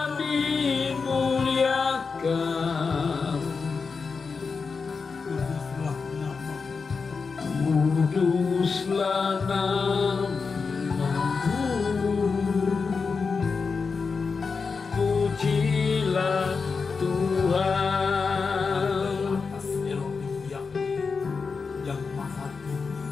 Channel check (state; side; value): quieter; right; 5.0 dB